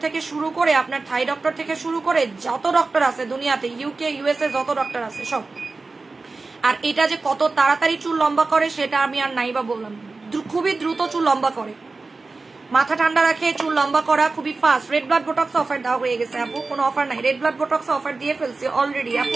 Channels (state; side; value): quieter; left; 3.8 dB